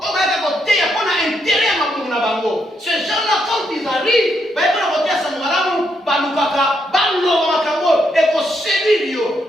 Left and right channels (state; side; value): normal; both; correlation 0.78